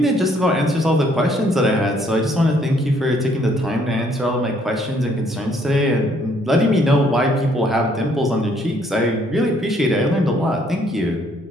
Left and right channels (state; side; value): normal; both; correlation 0.66